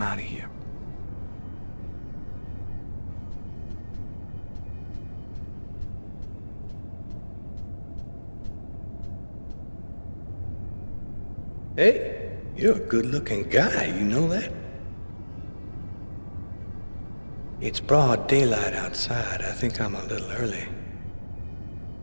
out of here. Hey, you're a good-looking guy, you know that? It's broad daylight outside. I think I'm a little early.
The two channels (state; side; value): inverted; both; correlation -1.00